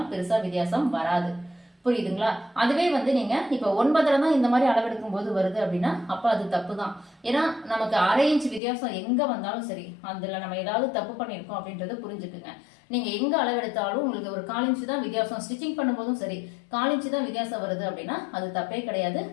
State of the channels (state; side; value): drops out; right; at 8.6 s